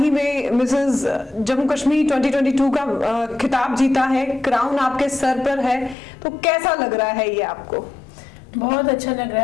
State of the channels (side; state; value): right; drops out; at 6.0 s